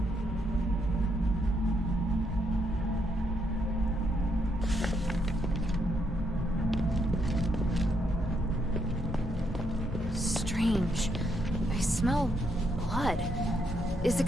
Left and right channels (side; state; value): both; normal; correlation 0.76